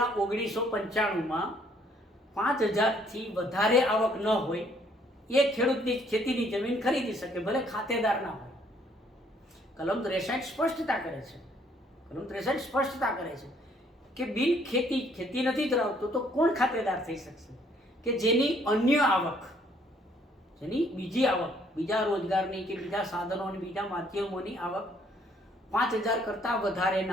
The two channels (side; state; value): both; normal; correlation 0.65